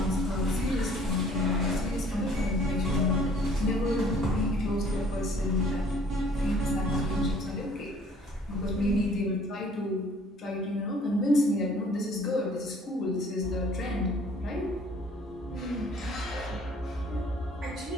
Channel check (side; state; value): both; normal; correlation 0.56